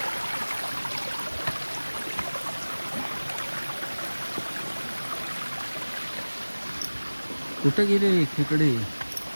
कुठे गेले खेकडे.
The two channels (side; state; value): both; inverted; correlation -1.00